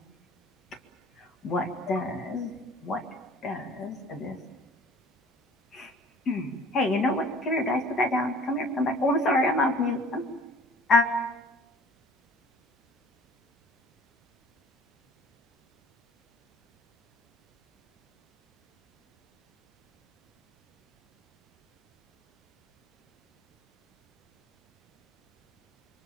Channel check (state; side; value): normal; both; correlation 0.49